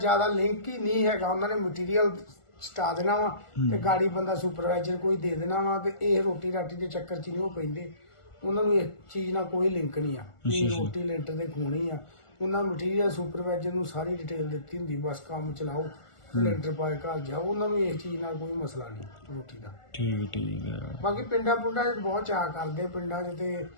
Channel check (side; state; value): right; late; 1.4 ms